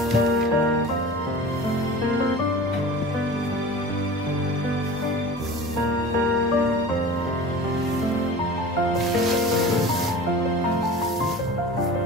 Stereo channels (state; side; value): normal; both; correlation 0.37